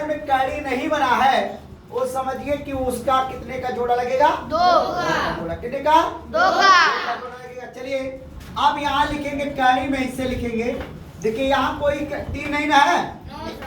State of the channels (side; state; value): both; identical; correlation 1.00